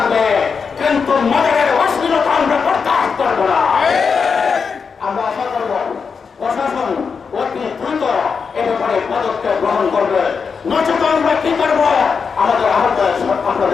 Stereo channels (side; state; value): right; quieter; 5.7 dB